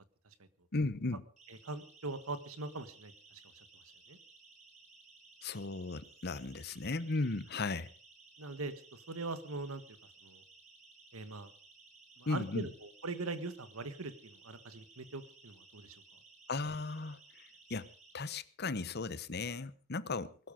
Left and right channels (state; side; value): normal; both; correlation 0.38